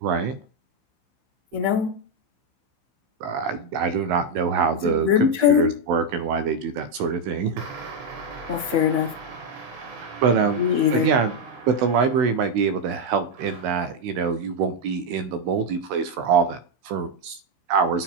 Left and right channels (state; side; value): late; left; 16 ms